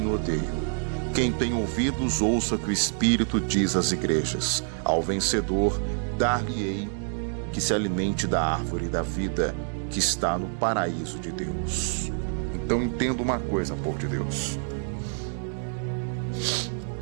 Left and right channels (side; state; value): left; silent; 60 dB below the other